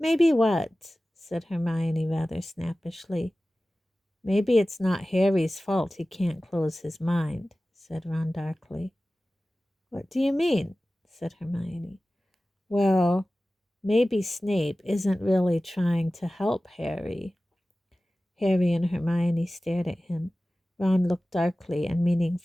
what?" said Hermione rather snappishly. "Maybe it's not Harry's fault he can't close his mind," said Ron darkly. "What do you mean?" said Hermione. "Well, maybe Snape isn't really trying to help Harry." Harry and Hermione stared at him. Ron looked darkly and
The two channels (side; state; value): both; normal; correlation 0.96